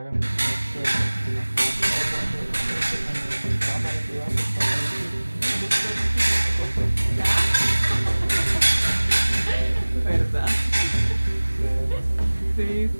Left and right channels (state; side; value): inverted; both; correlation -1.00